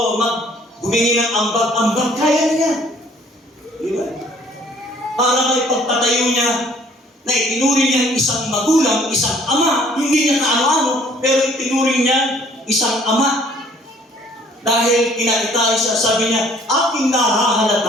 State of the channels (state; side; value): normal; both; correlation 0.59